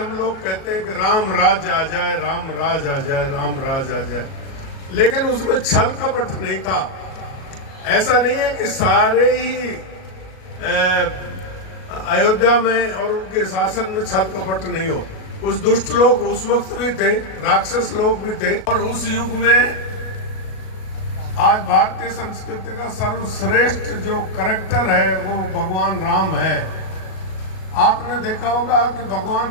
लोग कहते हैं कि राम राज आ जाए, राम राज आ जाए, राम राज आ जाए, लेकिन उसमें छल कपट नहीं था। ऐसा नहीं है कि सारे ही अयोध्या में और उनके शासन में छल कपट नहीं हो। कुछ दुष्ट लोग उस वक्त भी थे, राक्षस लोग भी थे, और उस युग में आज भारतीय संस्कृति का सर्वश्रेष्ठ जो कैरेक्टर है वो भगवान राम है। आपने देखा होगा कि भगवान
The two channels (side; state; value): right; late; 37 ms